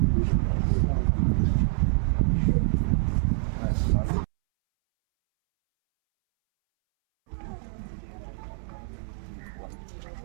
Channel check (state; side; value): silent; left; 61 dB below the other